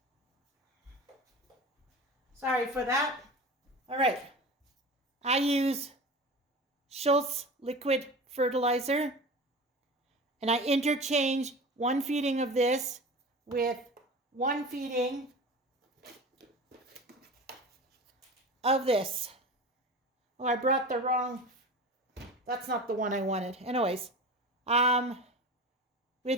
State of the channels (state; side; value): normal; both; correlation 0.33